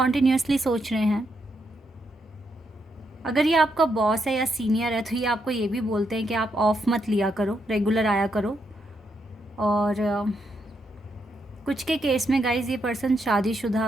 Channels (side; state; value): both; normal; correlation 0.80